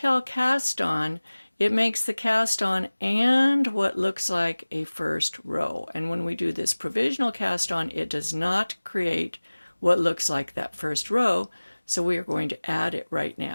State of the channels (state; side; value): inverted; both; correlation -1.00